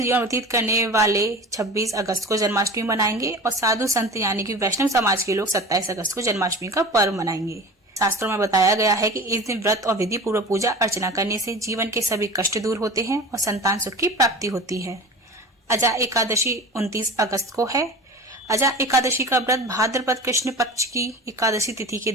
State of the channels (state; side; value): normal; both; correlation 0.35